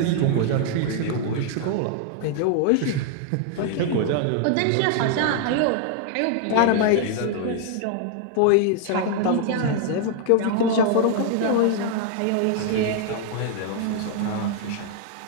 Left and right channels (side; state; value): both; different; correlation 0.00